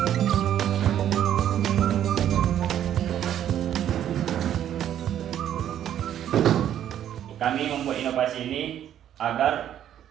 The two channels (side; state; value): left; quieter; 10.7 dB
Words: Kami membuat inovasi ini agar